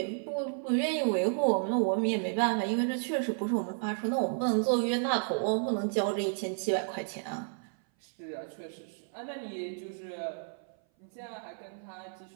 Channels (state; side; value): silent; left; 56 dB below the other